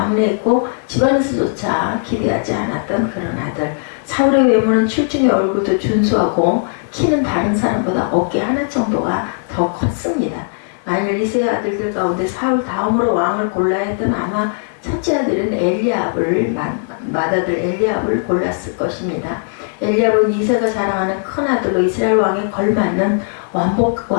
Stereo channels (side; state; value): right; silent; digital silence